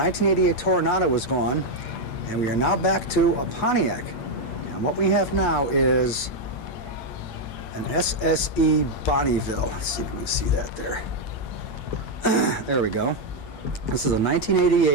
Toronado was gone, and we are now back to a Pontiac. And what we have now is an SSE Bonneville. Let's see if we can see that there. There we go. This is a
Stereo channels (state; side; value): late; right; 8.9 ms